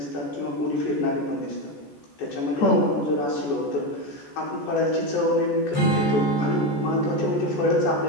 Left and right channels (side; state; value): right; late; 14 ms